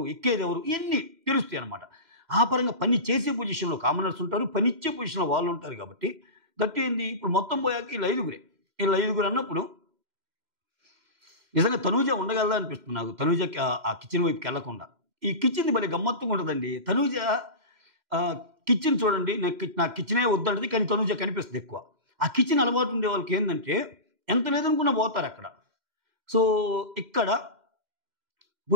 ఎక్కేదెవరు? ఇయన్నీ తెలుస్తాయన్నమాట. ఆ పరంగా పని చేసే పొజిషన్‌లో కామనర్స్ ఉంటారు. పనిచ్చే పొజిషన్‌లో వాళ్ళుంటారు కాబట్టి దట్ ఏంది ఇప్పుడు మొత్తం పోయాక ఈళ్ళు ఐదుగురే. ఈళ్ళు ఐదుగురు అన్నప్పుడు నిజంగా తనూజ ఉండగలదా అనిపిస్తుంది నాకు. తనూజకి ఆ కిచెన్ వైపుకెళ్ళకుండా. ఈ కిచెన్‌ది భలే గమ్మత్తుగా ఉంటదండి. తనూజ కిచెన్ చూడండి నాకు కిచెనే వద్దంటది. కానీ తనూజ కనిపిస్తది ఎక్కువ. ఆ కిచెన్ అలవాటు ఉండే వాళ్ళకేందంటే ఎంత లేదనుకున్నా పోతారక్కడ. సో, ఇక్కడ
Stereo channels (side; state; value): left; late; 2.1 ms